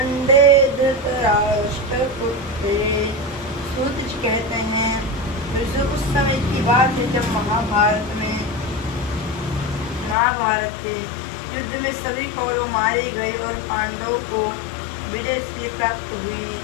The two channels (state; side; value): drops out; right; at 10.2 s